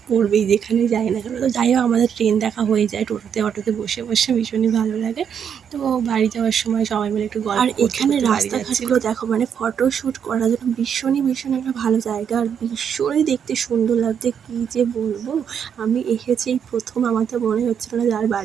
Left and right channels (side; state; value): left; quieter; 7.9 dB